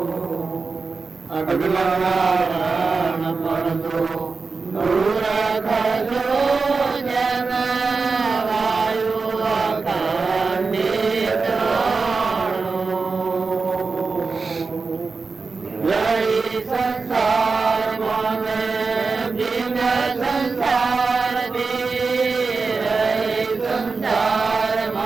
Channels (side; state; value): left; quieter; 4.4 dB